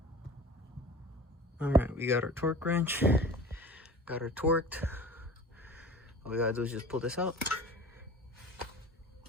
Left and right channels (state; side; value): normal; both; correlation 0.40